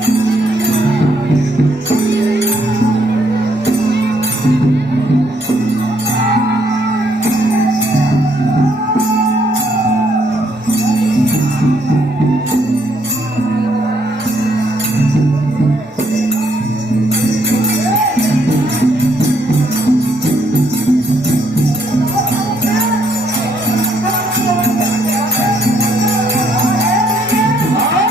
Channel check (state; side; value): normal; both; correlation 0.71